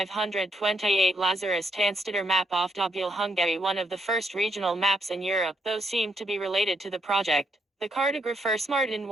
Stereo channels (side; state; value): both; normal; correlation 0.76